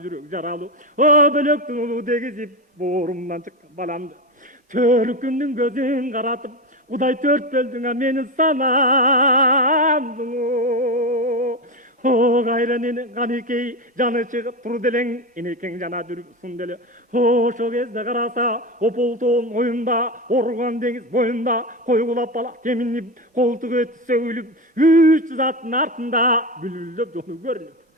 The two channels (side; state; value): both; normal; correlation 0.18